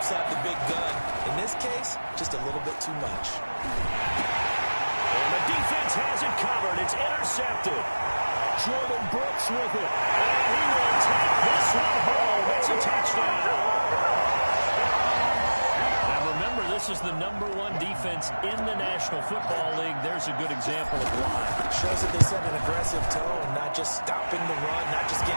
have the big gun. In this case, just a little bit too much. And the defense has it covered. It's intercepted. Jordan Brooks with it. And he will take this one home. It's a touchdown. Remember, this is the #1 defense in the National Football League. There's a good example of why. Shows that they set an aggressive tone, not just stopping the run, not just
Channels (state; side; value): inverted; both; correlation -1.00